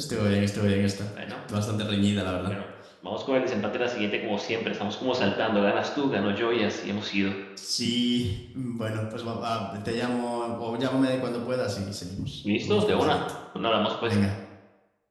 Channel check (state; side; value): identical; both; correlation 1.00